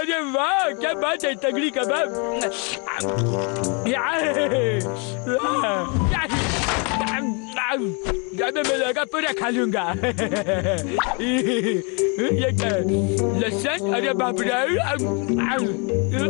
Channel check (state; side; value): quieter; right; 34.4 dB